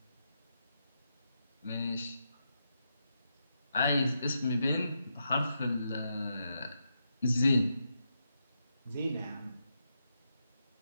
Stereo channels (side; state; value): both; inverted; correlation -0.84